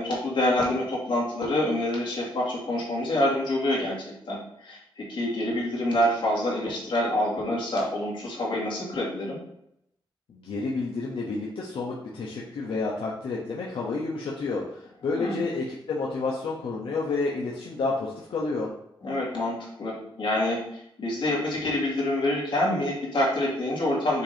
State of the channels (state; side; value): normal; both; correlation 0.65